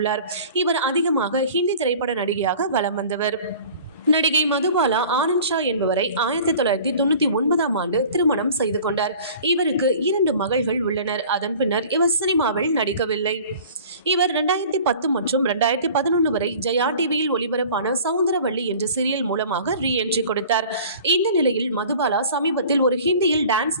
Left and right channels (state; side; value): inverted; both; correlation -0.45